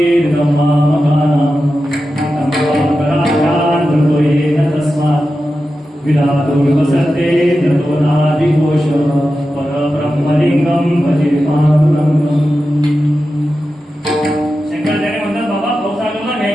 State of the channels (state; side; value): normal; both; correlation 0.92